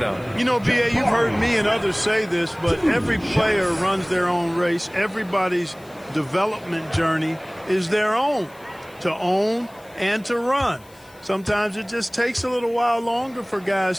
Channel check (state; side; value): noise; left; hiss, 27 dB below the sound